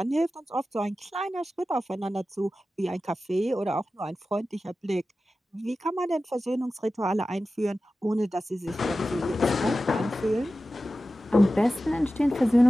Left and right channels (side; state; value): both; normal; correlation 0.94